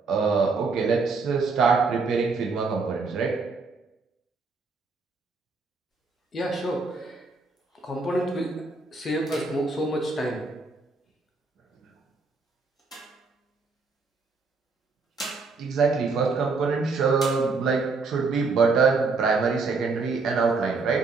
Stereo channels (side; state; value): left; quieter; 4.1 dB